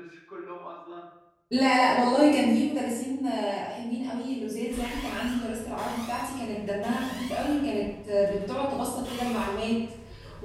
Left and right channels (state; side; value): identical; both; correlation 1.00